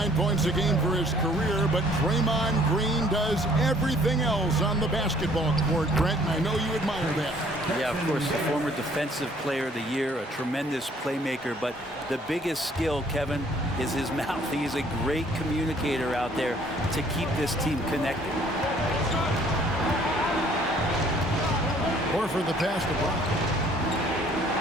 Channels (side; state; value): both; normal; correlation 0.59